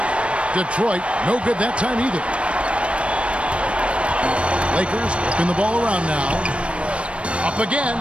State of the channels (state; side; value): late; left; 0.060 ms